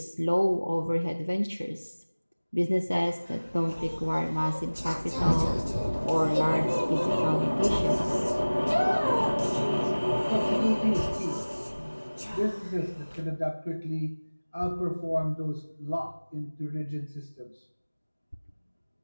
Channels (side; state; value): both; inverted; correlation -1.00